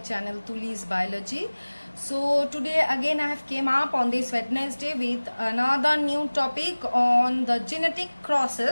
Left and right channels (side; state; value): both; inverted; correlation -1.00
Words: Tuli's Biology. So today again I have came up on this Wednesday with another new topic on the genetic